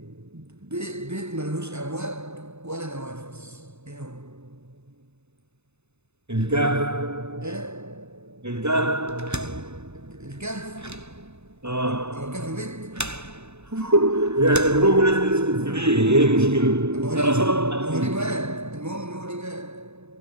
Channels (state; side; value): late; left; 0.81 ms